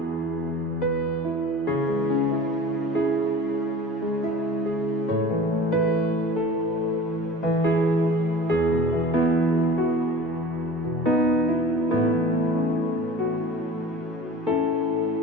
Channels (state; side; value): normal; both; correlation 0.40